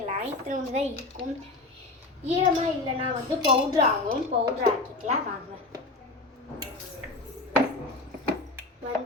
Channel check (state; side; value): quieter; right; 3.1 dB